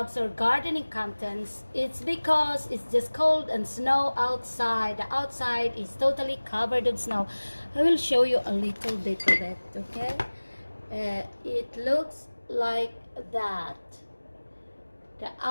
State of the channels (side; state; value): both; inverted; correlation -1.00